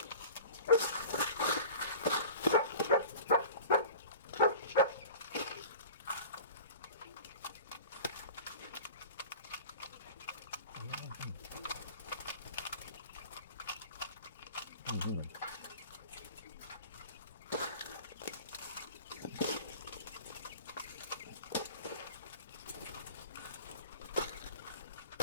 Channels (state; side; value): inverted; both; correlation -0.39